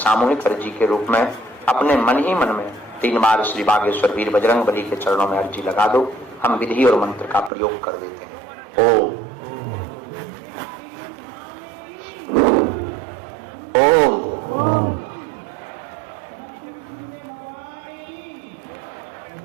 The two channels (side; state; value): left; drops out; at 7.5 s